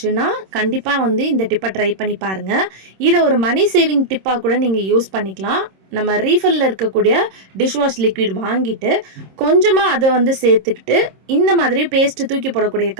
கண்டிப்பாக வந்து இந்த டிப்பை ட்ரை பண்ணி பாருங்கள். இதை ஒரு மணி சேவிங் டிப்பாக கூட நீங்கள் யூஸ் பண்ணிக்கலாம். நம்ம ரீஃபில்லில் இருக்கக்கூடிய டிஷ்வாஷ் லிக்விட் வாங்கிட்டு கொஞ்சமாக அதை வந்து சேர்த்துக்கிட்டு இந்த மாதிரி பேஸ்ட்டு தூக்கி போடக்கூடிய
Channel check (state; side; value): late; left; 26 ms